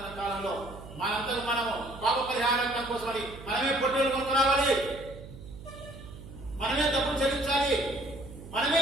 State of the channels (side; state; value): right; noise; hum, 15 dB below the sound